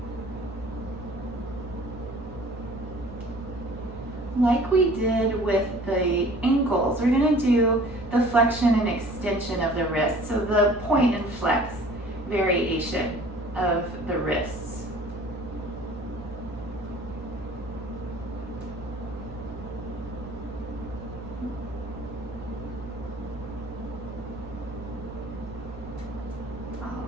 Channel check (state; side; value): normal; both; correlation 0.49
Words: Like we did with the ankles, we're going to do the flexion and extension of the wrist. So the point and flex variation of the wrists.